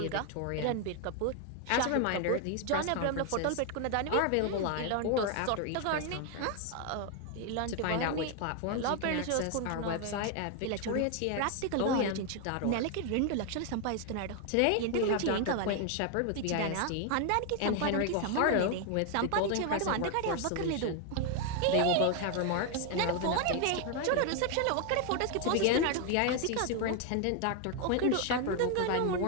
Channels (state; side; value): different; both; correlation 0.01